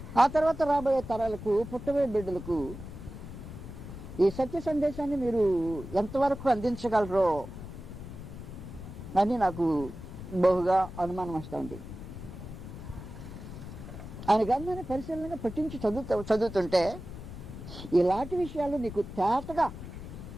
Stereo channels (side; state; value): left; noise; rumble, 11 dB below the sound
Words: ఆ తర్వాత రాబోయే తరాలకు, పుట్టబోయే బిడ్డలకు ఈ సత్య సందేశాన్ని మీరు ఎంతవరకు అందించగలరో అని నాకు బహుగా అనుమానం వస్తూ ఉంది. ఆయన గ్రంథాన్ని పరిశీలనగా పట్టించి చదువుతుంటే ఇలాంటి విషయాలు నీకు తేటగా